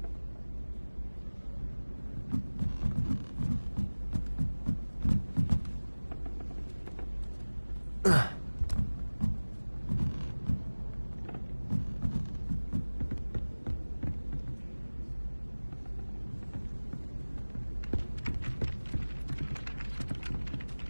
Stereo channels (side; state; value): both; inverted; correlation -1.00